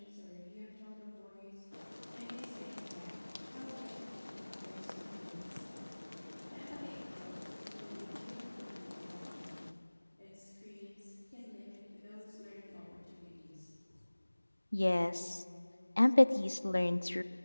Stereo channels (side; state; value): both; inverted; correlation -1.00